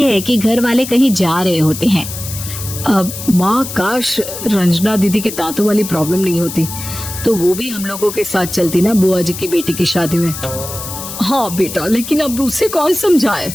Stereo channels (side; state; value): left; noise; hiss, 9 dB below the sound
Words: है कि घर वाले कहीं जा रहे होते हैं। अब माँ, काश रंजना दीदी के दांतों वाली प्रॉब्लम नहीं होती, तो वो भी हम लोगों के साथ चलती ना बुआ जी की बेटी की शादी में। हाँ बेटा, लेकिन अब उसे कौन समझाए